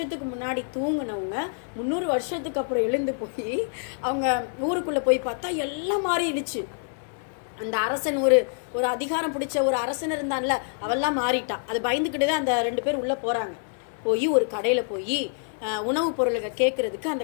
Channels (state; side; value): silent; right; digital silence